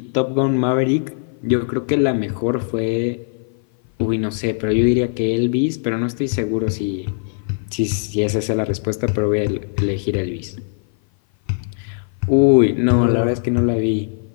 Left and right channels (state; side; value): silent; right; 56 dB below the other